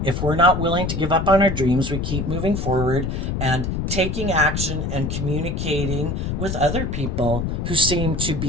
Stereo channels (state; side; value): noise; left; rumble, 2 dB below the sound